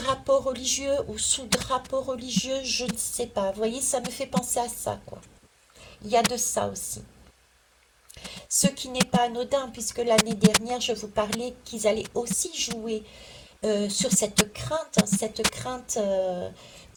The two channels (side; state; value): both; identical; correlation 1.00